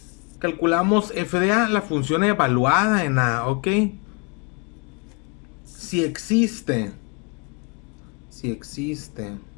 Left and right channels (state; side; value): quieter; right; 33.7 dB